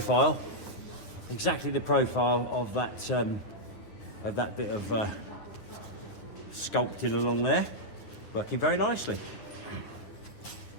of that bit of sculpting along there. Working very nicely.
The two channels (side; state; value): right; late; 9.6 ms